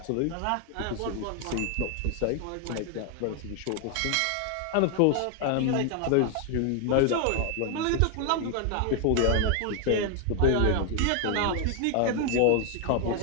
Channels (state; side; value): different; both; correlation 0.00